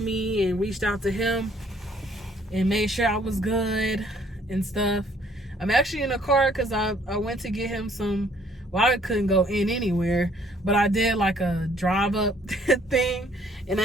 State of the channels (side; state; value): both; normal; correlation 0.62